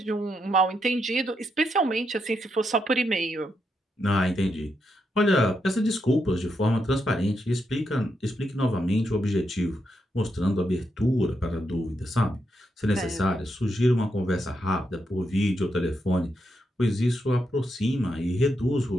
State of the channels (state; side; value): normal; both; correlation 0.82